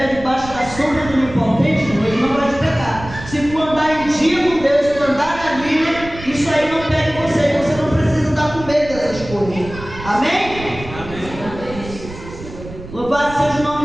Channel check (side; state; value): right; noise; rumble, 13 dB below the sound